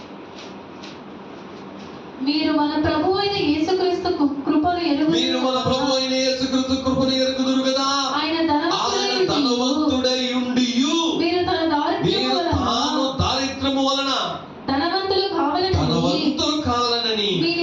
మీరు మన ప్రభు అయిన యేసుక్రీస్తు కృపను ఎరుగుదురు కదా. ఆయన ధనవంతుడై ఉండియు మీరు తాను దారిద్ర్యము వలన ధనవంతులు కావాలనని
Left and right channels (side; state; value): both; identical; correlation 1.00